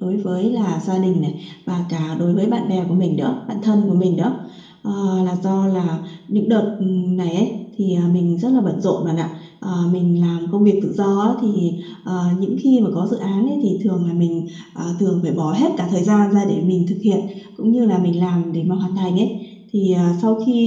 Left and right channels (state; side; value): identical; both; correlation 1.00